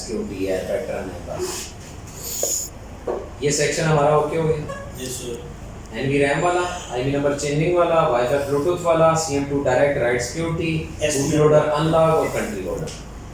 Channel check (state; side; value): identical; both; correlation 1.00